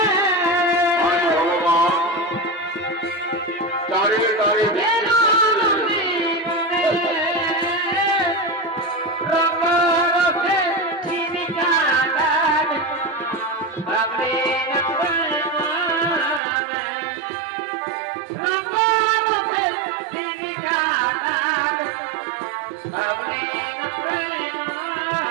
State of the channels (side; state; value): left; drops out; at 16.4 s